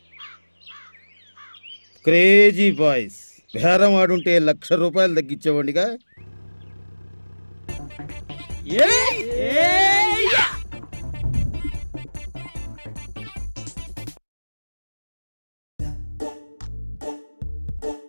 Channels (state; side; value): inverted; both; correlation -1.00